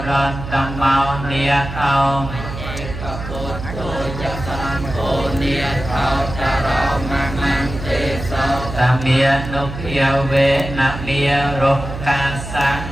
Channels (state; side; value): noise; right; hum, 8 dB below the sound